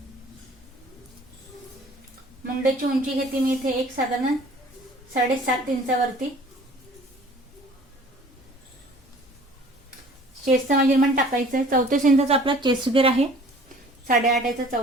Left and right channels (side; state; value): both; normal; correlation 0.50